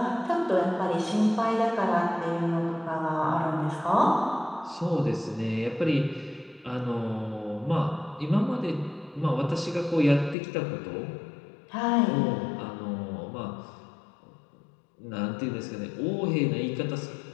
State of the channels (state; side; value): drops out; right; at 10.4 s